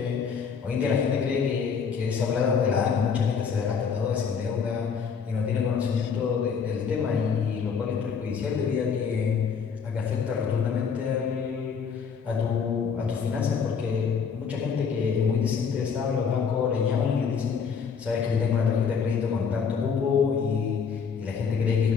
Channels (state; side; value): quieter; right; 6.3 dB